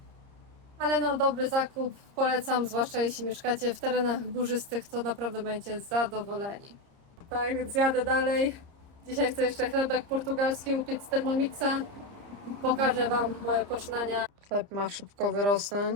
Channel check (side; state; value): left; late; 30 ms